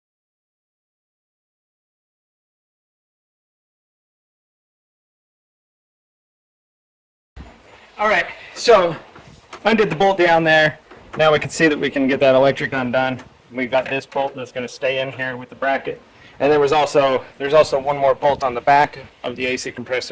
All right, so undid the bolt down there. Now we can see that we can get that electric undone. We've got this bolt that's going to stay in here with the bracket. And there's also one more bolt on the back of the AC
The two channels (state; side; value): identical; both; correlation 1.00